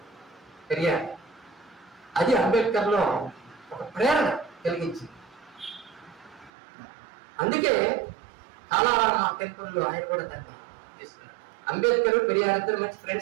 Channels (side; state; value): left; drops out; at 6.5 s